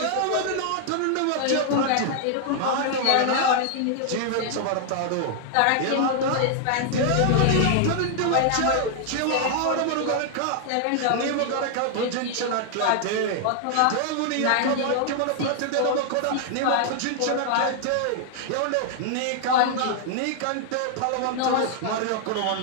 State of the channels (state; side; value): different; both; correlation 0.00